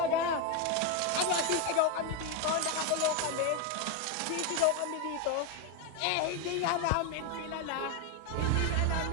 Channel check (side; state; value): both; different; correlation 0.02